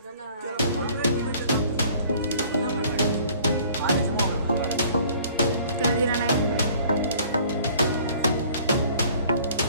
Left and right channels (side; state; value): both; inverted; correlation -0.54